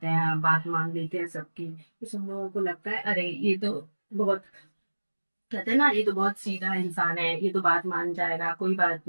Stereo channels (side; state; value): both; inverted; correlation -1.00